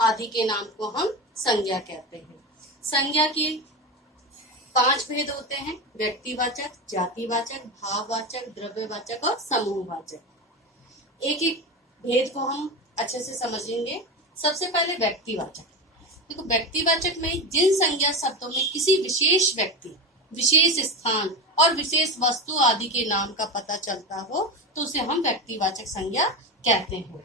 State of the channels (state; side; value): normal; both; correlation 0.21